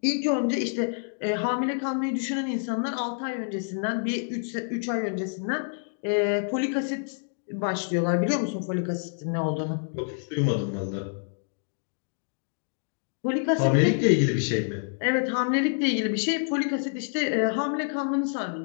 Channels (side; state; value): right; silent; digital silence